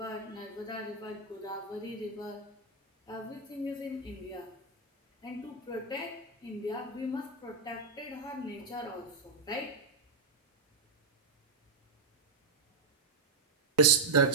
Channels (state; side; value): quieter; left; 4.1 dB